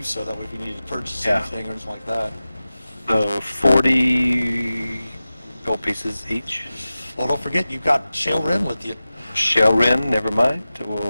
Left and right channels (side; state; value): both; inverted; correlation -0.95